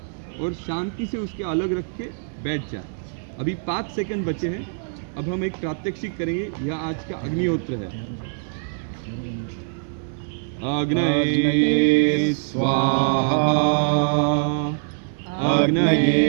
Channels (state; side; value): silent; left; digital silence